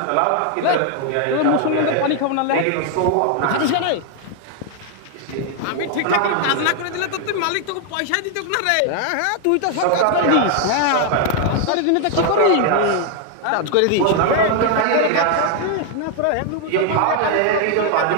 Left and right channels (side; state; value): both; different; correlation 0.00